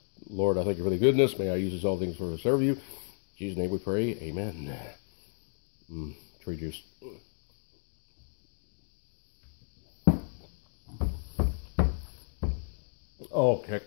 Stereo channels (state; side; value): silent; right; digital silence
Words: Lord, I thank you for the goodness. May I use this all things for to serve you. In Jesus' name we pray. Amen. Tree juice. Oh, kick